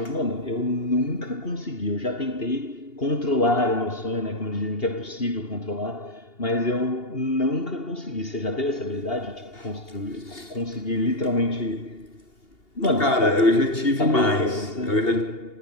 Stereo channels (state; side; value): late; right; 2.8 ms